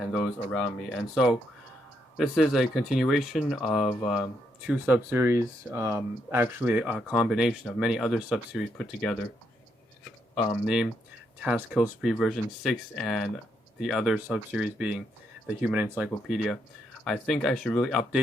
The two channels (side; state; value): both; normal; correlation 0.77